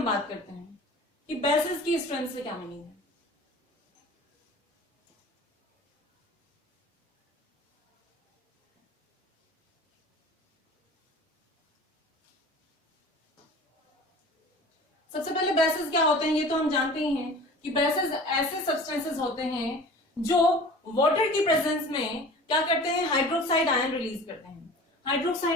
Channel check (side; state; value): both; normal; correlation 0.41